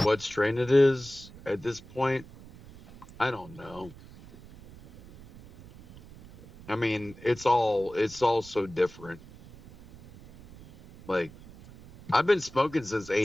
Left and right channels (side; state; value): right; noise; rumble, 20 dB below the sound